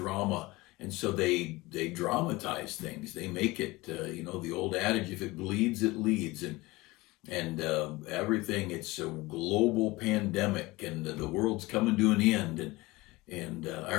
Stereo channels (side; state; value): right; quieter; 21.3 dB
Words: And so they dramatize things. They make it, the old adage, if it bleeds, it leads. And everything, it's a global pandemic and the world's coming to an end. And I